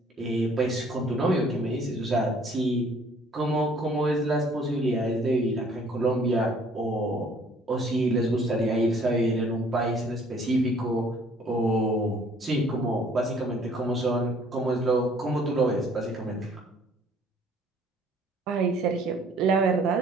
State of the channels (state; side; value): normal; both; correlation 0.58